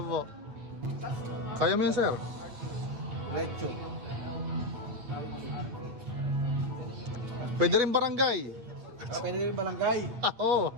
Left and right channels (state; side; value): late; left; 8.6 ms